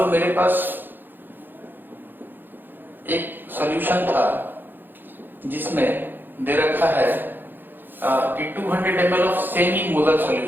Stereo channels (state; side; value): late; left; 0.093 ms